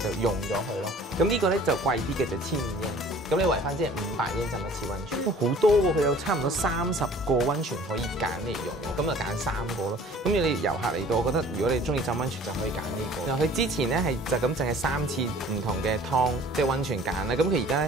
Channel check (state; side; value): normal; both; correlation 0.50